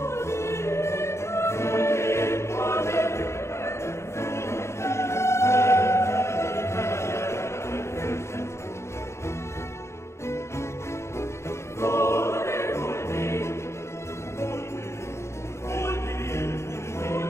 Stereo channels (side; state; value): right; late; 0.13 ms